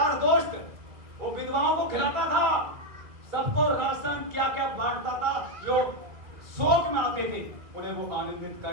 दोस्त, वो विधवाओं को खिलाता था, सबको राशन क्या क्या बांटता था, जो शोक में आते थे उन्हें वो आनंदित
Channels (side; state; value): left; late; 2.2 ms